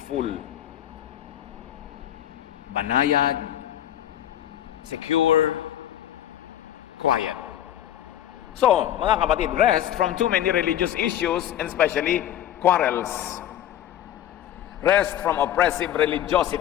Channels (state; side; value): quieter; right; 11.7 dB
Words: Banayad, secure, quiet. So, mga kapatid, rest from too many religious issues and especially quarrels. Rest from oppressive